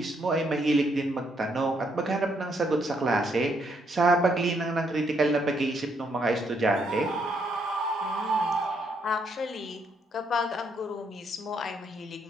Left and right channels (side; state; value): both; normal; correlation 0.73